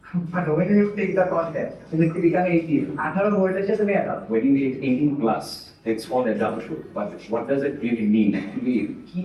But when you take the concept, you become 18. After a word, it's just a matter. When you hit 18 plus, it's called adulthood. But what does it really mean? Actually, key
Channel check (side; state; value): both; identical; correlation 1.00